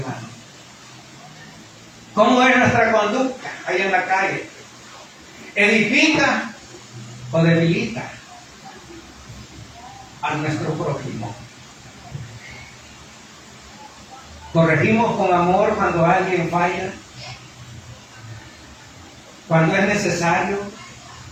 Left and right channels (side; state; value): both; identical; correlation 1.00